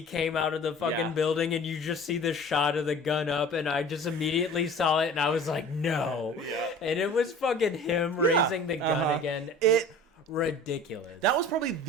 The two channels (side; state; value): both; normal; correlation 0.43